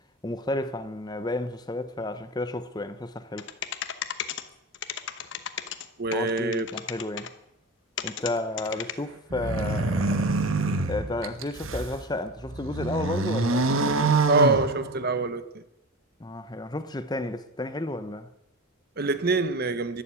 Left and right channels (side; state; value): both; normal; correlation 0.28